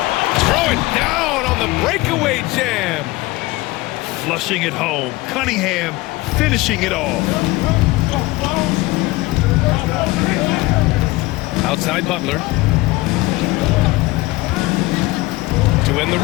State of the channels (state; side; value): quieter; right; 20.4 dB